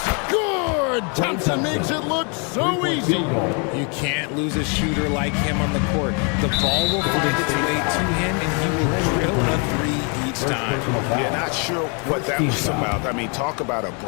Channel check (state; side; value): quieter; right; 36.1 dB